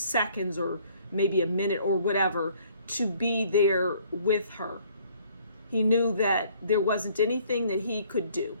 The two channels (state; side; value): inverted; both; correlation -0.60